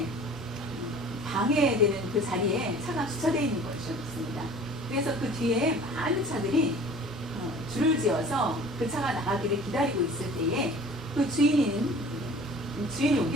방해되는 그 자리에 차가 주차되어 있는 것이었습니다. 그래서 그 뒤에 많은 차들이 줄을 지어서 그 차가 나가기를 기다리고 있을 때에 그 주인이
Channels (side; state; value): both; normal; correlation 0.46